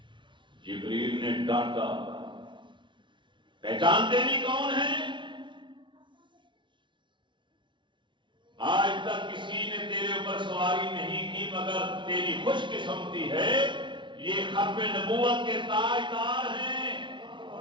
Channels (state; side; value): late; left; 0.24 ms